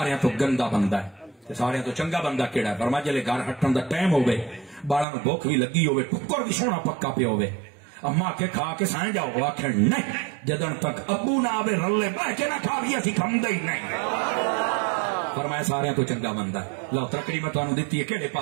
تو گندا بندہ ہے تے سارے تو چنگا بندہ کیڑا ہے فرمایا جلے گھر ہٹن دا ٹائم ہوے بالاں نو بھوک بھی لگی ہوے ٹکر بھی سونا پکا پیا ہوے اما کے کھا کے سائیں جاؤ آخر نہیں جدن تک ابو نہ آوے رلے بہ کے نہ کھا بھی اسی کھمدے ہی نہیں فرمایا سارے تو چنگا بندہ ہے لو ترکڑی میں تانوں دتی ہے کیڑے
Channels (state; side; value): drops out; left; at 5.1 s